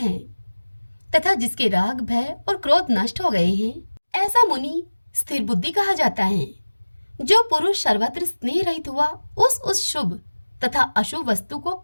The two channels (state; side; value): inverted; both; correlation -1.00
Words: तथा जिसके राग, भय और क्रोध नष्ट हो गए हैं, ऐसा मुनि स्थिर बुद्धि कहा जाता है। जो पुरुष सर्वत्र स्नेह रहित हुआ उस शुभ तथा अशुभ वस्तु को